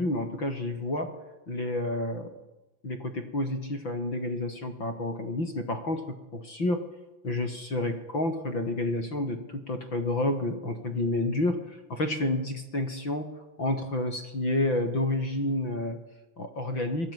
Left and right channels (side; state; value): right; late; 5.9 ms